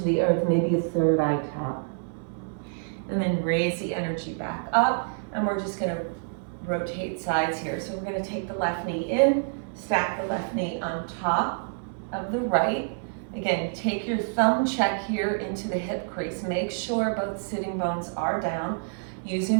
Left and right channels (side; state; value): left; silent; 60 dB below the other